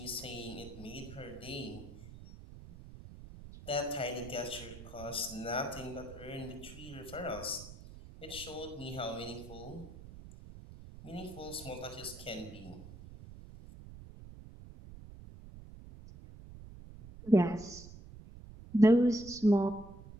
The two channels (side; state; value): right; noise; rumble, 15 dB below the sound